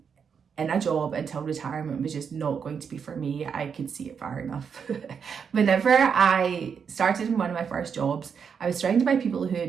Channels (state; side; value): quieter; left; 6.7 dB